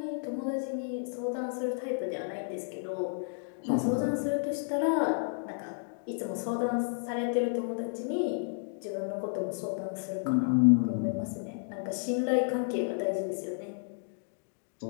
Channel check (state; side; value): silent; right; digital silence